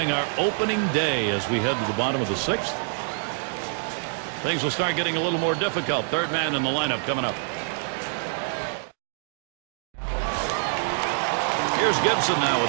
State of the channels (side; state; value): left; silent; digital silence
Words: our opening day as we head to the bottom of the 6th. Things will start getting a little more difficult. Third man in the lineup coming up. Here's Gibson now